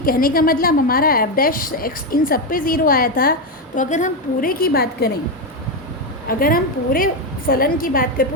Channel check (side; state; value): both; normal; correlation 0.08